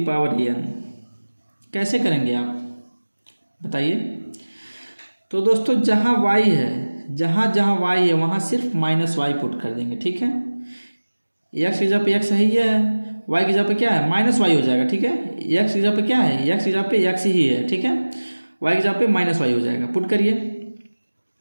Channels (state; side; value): inverted; both; correlation -1.00